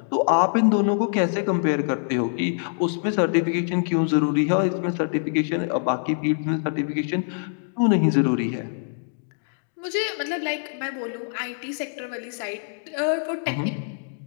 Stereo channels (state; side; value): silent; right; digital silence